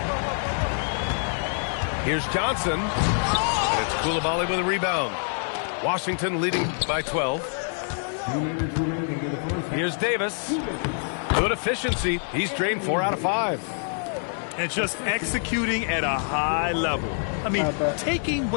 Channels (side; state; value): right; silent; 60 dB below the other